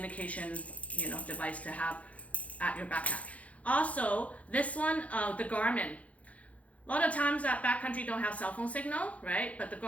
you know, device to have at your backpack. Also, this one, the Garmin. A lot of times that backcountry don't have cell phone signal, right? But the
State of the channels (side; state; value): right; late; 0.066 ms